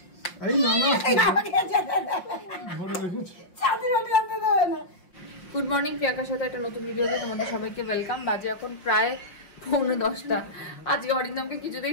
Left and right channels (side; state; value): right; late; 5.6 ms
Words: এই গুড মর্নিং, প্রিয়াঙ্কার সাথে একটা নতুন ভিডিওতে তোমাদের সবাইকে ওয়েলকাম। বাজে এখন প্রায় 9:45। আজকে অরিন্দমকে